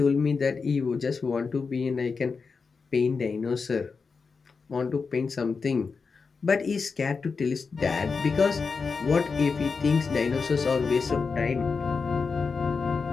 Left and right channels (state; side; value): quieter; right; 4.9 dB